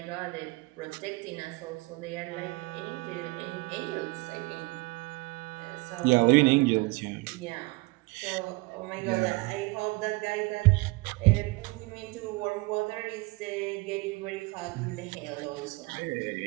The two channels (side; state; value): left; quieter; 24.7 dB